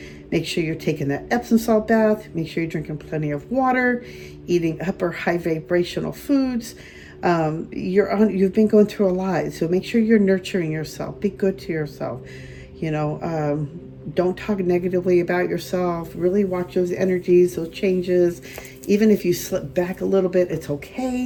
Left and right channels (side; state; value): both; identical; correlation 1.00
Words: Make sure you're taking that Epsom salt bath. Make sure you're drinking plenty of water, eating upper high vibrational foods. You've been going through a lot, so make sure you're nurturing yourself. Be good to yourself. Don't talk negatively about yourself. Really watch those energies, those changes. Even if you slip back a little bit, it's